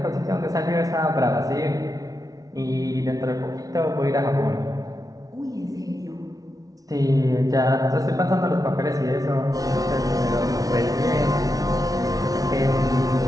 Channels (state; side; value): late; left; 0.18 ms